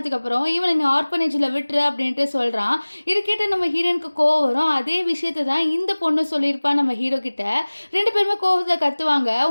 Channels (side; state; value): both; inverted; correlation -1.00